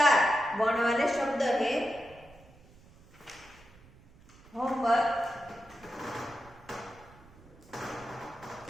वर्ण वाले शब्द है। होमवर्क।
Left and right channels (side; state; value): right; noise; rumble, 25 dB below the sound